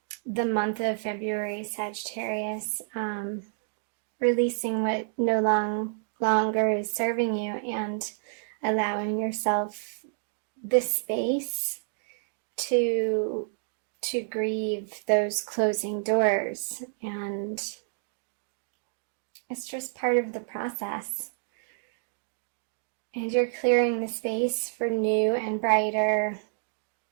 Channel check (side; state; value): left; silent; digital silence